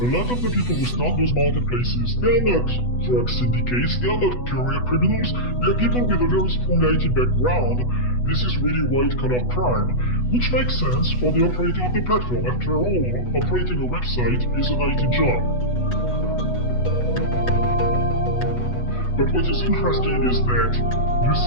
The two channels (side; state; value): right; late; 8.1 ms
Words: lot of the people who start those marketplaces, they are not drug syndicates, they are not career criminals, they are people with a very strong IT background. This is really white-collar crime, which makes sense for the operator of the platform. After all, operating a website is an IT job. But what is interesting is that you